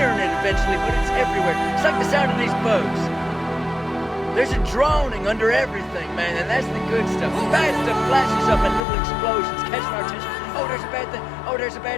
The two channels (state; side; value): drops out; right; at 8.8 s